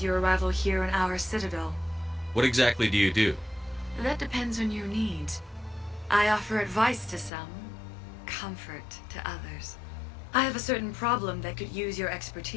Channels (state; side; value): drops out; right; at 7.3 s